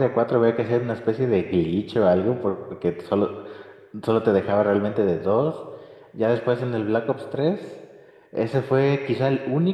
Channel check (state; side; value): identical; both; correlation 1.00